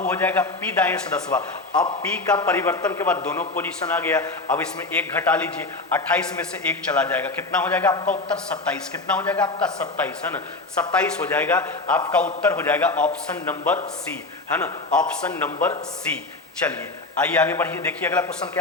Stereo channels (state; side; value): quieter; right; 3.3 dB